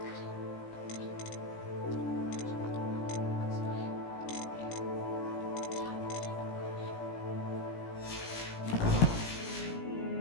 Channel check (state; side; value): late; right; 17 ms